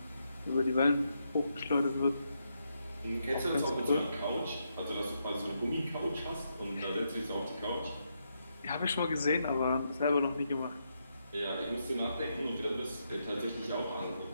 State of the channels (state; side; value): inverted; both; correlation -0.81